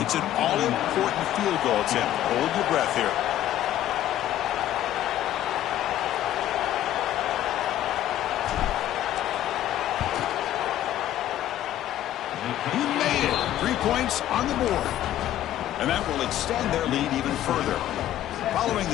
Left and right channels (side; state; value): right; quieter; 12.6 dB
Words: it's an all-important field goal attempt. Hold your breath here. He made it. 3 points on the board. And that will extend their lead even further. Following